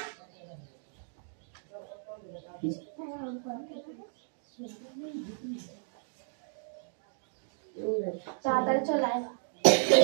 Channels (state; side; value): silent; left; digital silence